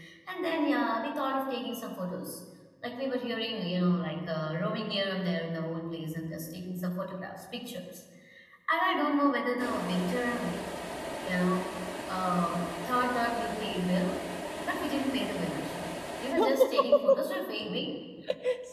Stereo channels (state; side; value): identical; both; correlation 1.00